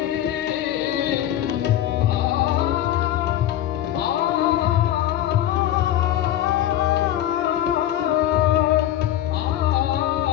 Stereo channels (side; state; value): right; quieter; 12.3 dB